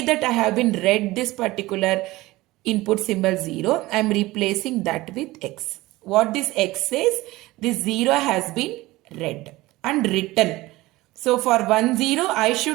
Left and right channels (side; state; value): left; quieter; 19.1 dB